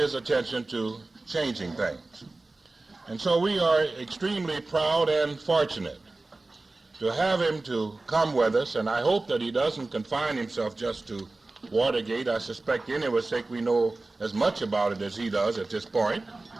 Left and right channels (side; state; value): left; quieter; 3.2 dB